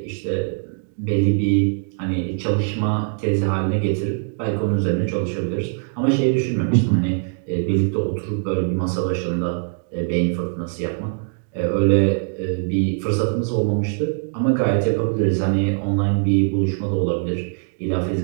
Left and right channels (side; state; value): left; silent; 64 dB below the other